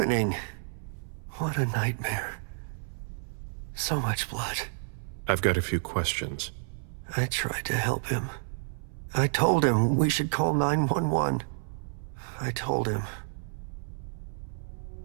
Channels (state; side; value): silent; left; 58 dB below the other